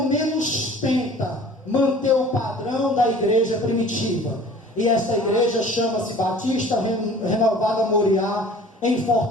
menos tenta manter o padrão da igreja primitiva. E essa igreja chama-se Batista Renovada Moriá, em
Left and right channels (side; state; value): both; normal; correlation 0.47